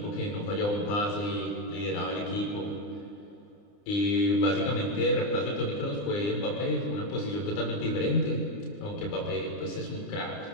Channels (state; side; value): late; right; 29 ms